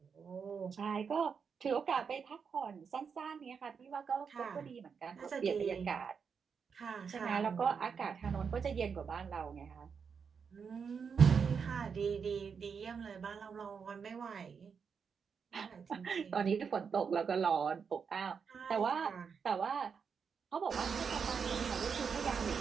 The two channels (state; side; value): quieter; left; 6.2 dB